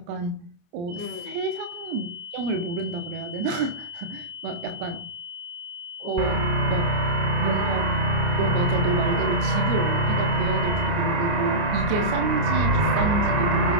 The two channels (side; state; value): left; late; 29 ms